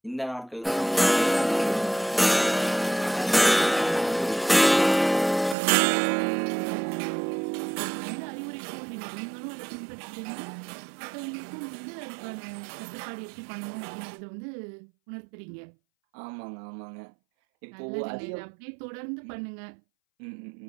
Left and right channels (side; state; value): left; drops out; at 5.6 s